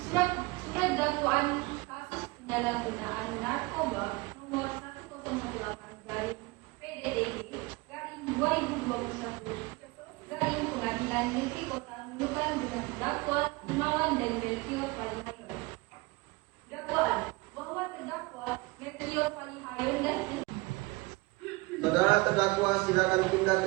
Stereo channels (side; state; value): left; quieter; 24.6 dB